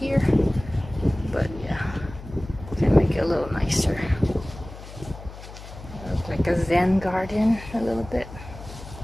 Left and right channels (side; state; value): left; noise; hum, 15 dB below the sound